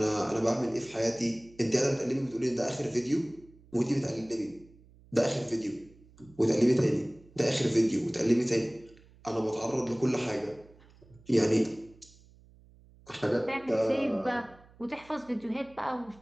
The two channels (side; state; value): right; noise; hum, 26 dB below the sound